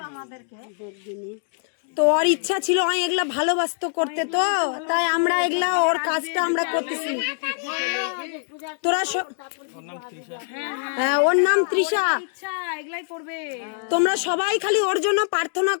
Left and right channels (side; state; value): right; silent; digital silence